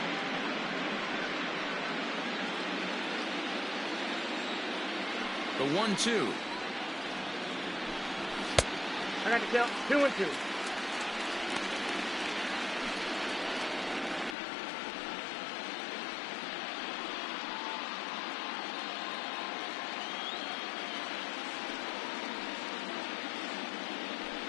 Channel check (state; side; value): drops out; right; at 14.4 s